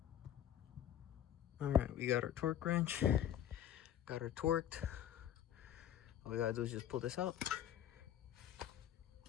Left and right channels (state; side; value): quieter; right; 10.7 dB